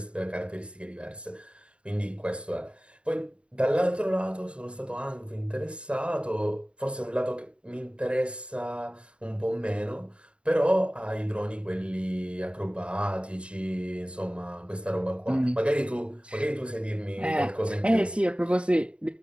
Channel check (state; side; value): late; left; 0.057 ms